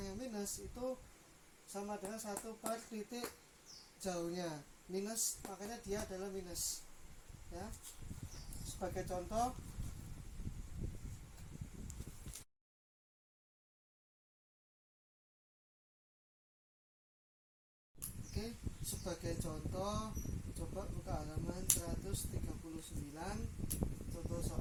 minus itu sama dengan 1 per titik jauhnya minus, makanya dia adalah minus ya. Sebagai contoh, sebagai contoh coba buka halaman 139, contoh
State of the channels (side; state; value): both; identical; correlation 1.00